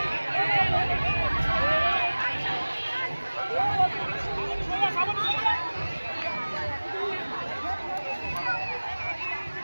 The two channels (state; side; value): inverted; both; correlation -1.00